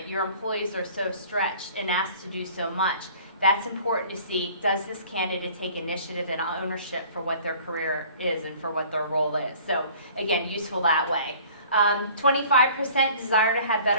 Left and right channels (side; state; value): both; inverted; correlation -0.50